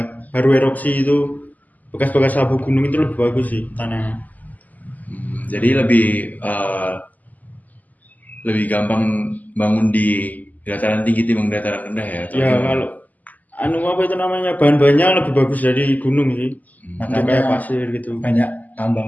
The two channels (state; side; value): late; right; 0.080 ms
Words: baru erupsi itu bekas-bekas abu gunung itu lebih bagus sih tanahnya. Jadi lebih gampang bangun di dataran tinggi dibanding dataran rendah ya? Atau Ya gimana? kalau apa itu namanya, bahan-bahannya lebih bagus dari gunung sih. Untuk Makanya kayak pasir gitu. banyak